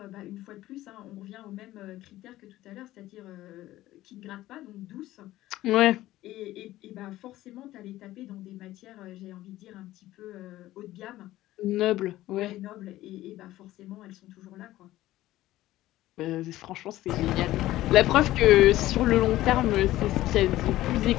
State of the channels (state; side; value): quieter; right; 15.6 dB